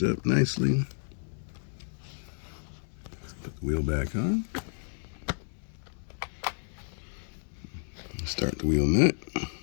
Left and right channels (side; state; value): right; silent; 57 dB below the other